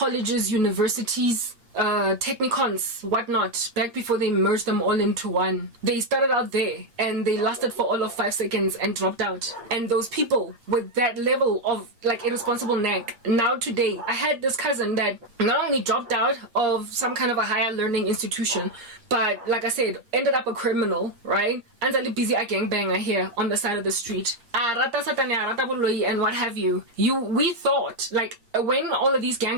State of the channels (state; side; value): late; left; 8.5 ms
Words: universities, technicons, whatnot, back before they merged them all into one. They started out there and they lasted for all of 5 seconds and dropped out. And those people with that level of like irresponsible neck, now today, I had this cousin that not only dropped out of some kind of a higher learning institution, but like I said, ended up a criminal, right? And a busy a gangbanger here on the side of the street. Boloi and what have you. We thought, like, when all of these